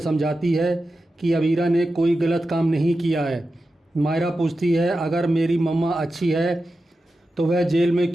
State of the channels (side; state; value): both; normal; correlation 0.92